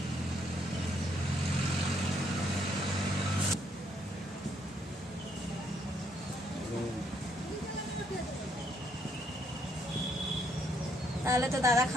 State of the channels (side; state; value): both; normal; correlation 0.71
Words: তাহলে তো দাদা